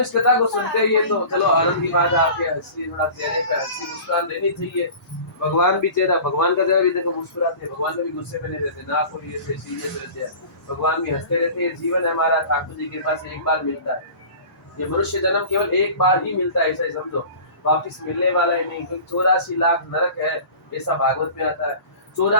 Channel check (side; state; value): right; late; 1.0 ms